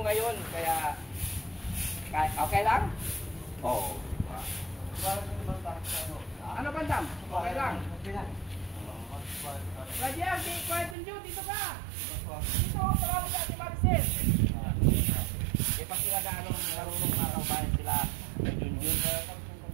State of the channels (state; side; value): drops out; left; at 11.0 s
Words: ngayon, kaya okay lang? Oo. Ano bandam? Okay lang. Rajian, kahit tunjuk, dito ka. Dito, parang sa si Marcel. Eh, pag sila gaano marunong makakabayan sila ng Junjun,